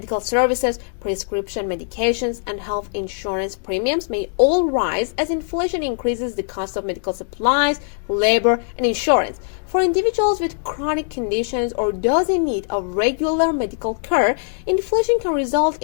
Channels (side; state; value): right; silent; 65 dB below the other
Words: services, prescription medications, and health insurance premiums may all rise as inflation increases the cost of medical supplies, labor, and insurance. For individuals with chronic conditions or those in need of regular medical care, inflation can result